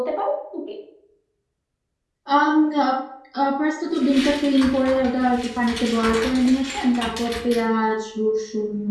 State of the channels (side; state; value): both; identical; correlation 1.00